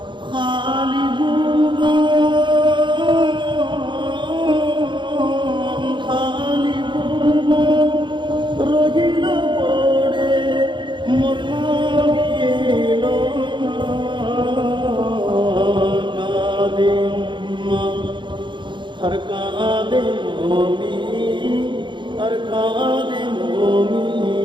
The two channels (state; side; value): late; left; 0.23 ms